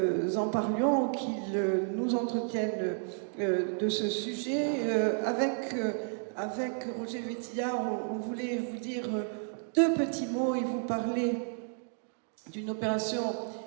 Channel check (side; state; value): left; silent; 57 dB below the other